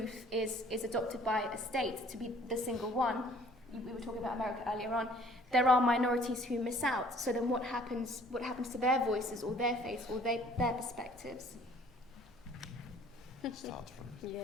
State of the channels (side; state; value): both; normal; correlation 0.55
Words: is adopted by a state to be the single one, we were talking about America earlier on, there are minorities who miss out. So then what happens to their voices or their faiths or their perspectives? Start from